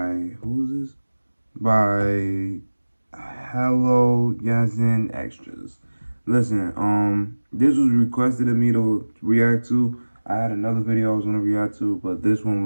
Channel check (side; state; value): both; inverted; correlation -1.00